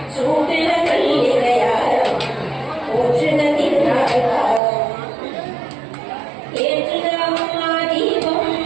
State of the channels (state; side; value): drops out; left; at 4.6 s